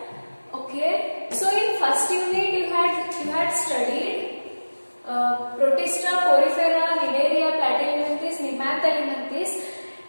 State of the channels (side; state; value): both; inverted; correlation -1.00